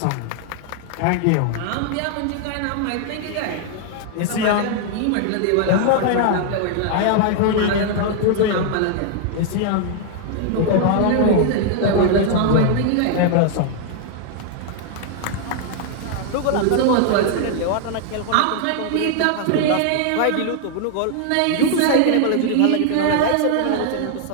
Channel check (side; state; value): both; different; correlation 0.00